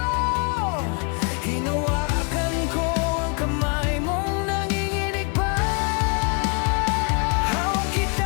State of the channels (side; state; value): right; quieter; 35.3 dB